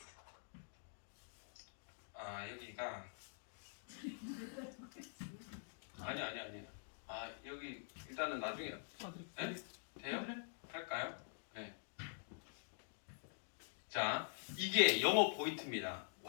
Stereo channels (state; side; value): silent; right; digital silence